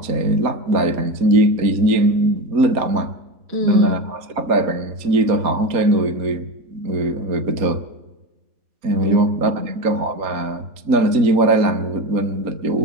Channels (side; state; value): left; late; 4.2 ms